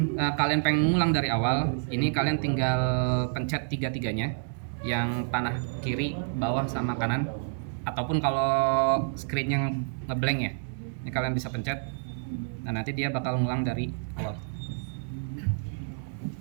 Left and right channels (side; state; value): left; silent; digital silence